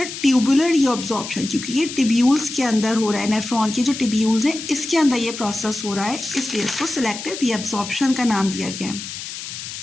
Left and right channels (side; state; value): left; noise; hiss, 9 dB below the sound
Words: ट्यूबुलर रीअब्जॉर्प्शन, क्योंकि ये ट्यूब्यूल्स के अंदर हो रहा है, नेफ्रॉन के जो ट्यूब्यूल्स हैं इसके अंदर ये प्रोसेस हो रहा है, इसलिए इसको सेलेक्टिव रीअब्जॉर्प्शन का नाम दिया गया है।